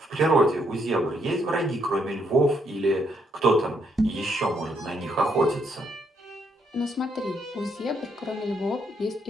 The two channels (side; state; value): both; normal; correlation 0.74